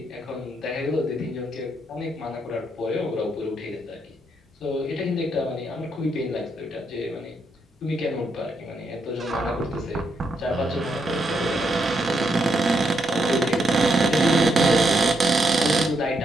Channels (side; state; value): both; normal; correlation 0.78